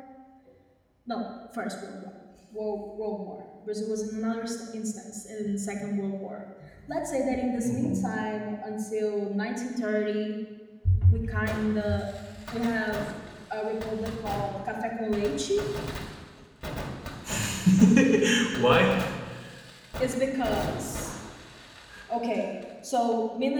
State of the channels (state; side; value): identical; both; correlation 1.00